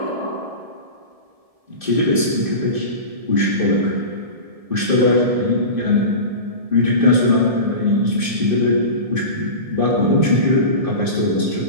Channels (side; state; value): left; late; 1.7 ms